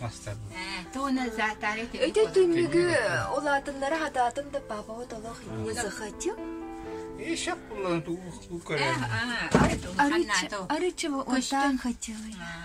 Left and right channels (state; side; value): identical; both; correlation 1.00